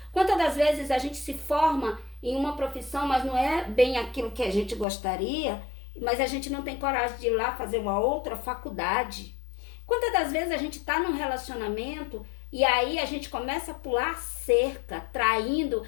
Quantas das vezes a gente se forma em uma profissão, mas não é bem aquilo que a gente gostaria, mas a gente não tem coragem de ir lá fazer uma outra faculdade. Quantas das vezes a gente está num relacionamento e aí a gente começa a pular cerca, traindo,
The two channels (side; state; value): right; drops out; at 4.9 s